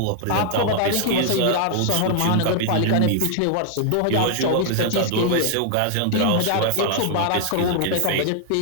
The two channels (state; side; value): different; both; correlation -0.01